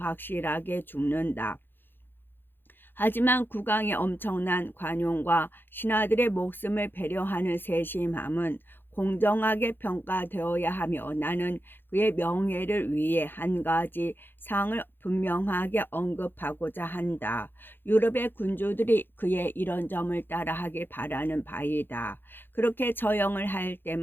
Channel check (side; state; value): right; late; 0.099 ms